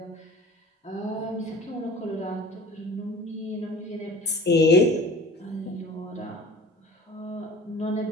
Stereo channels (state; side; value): normal; both; correlation 0.43